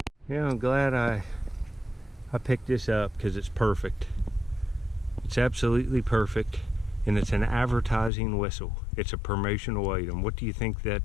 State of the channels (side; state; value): right; drops out; at 8.1 s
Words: Yeah, I'm glad I picked this up because it's perfect. It's absolutely perfect, and it's an advertising whistle. It's a promotional item. What do you think